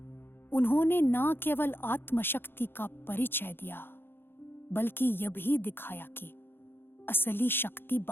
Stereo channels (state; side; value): late; right; 0.10 ms